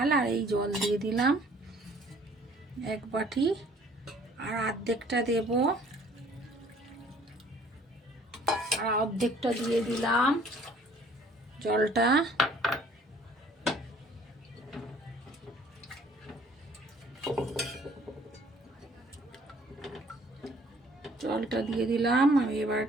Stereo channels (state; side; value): normal; both; correlation 0.56